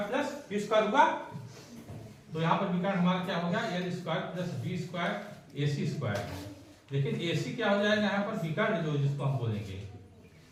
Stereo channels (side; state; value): both; identical; correlation 1.00